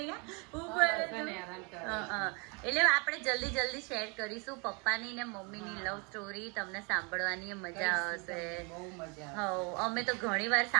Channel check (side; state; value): left; quieter; 31.8 dB